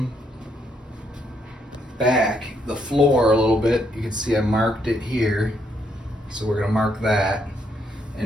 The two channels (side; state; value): both; normal; correlation 0.74